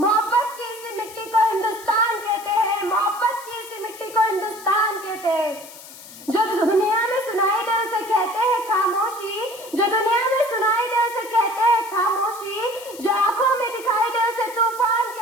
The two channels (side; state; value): left; noise; hiss, 17 dB below the sound